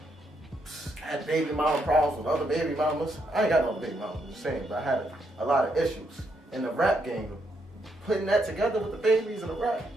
Had baby mama problems with other baby mamas. I ain't got no baby mamas, I'm just saying, but I had a lot of issues. In the rap game, putting that together with the babies and the rap,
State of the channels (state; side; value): normal; both; correlation 0.77